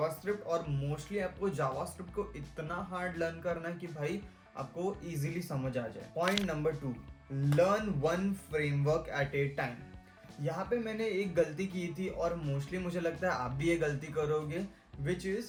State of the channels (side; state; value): both; identical; correlation 1.00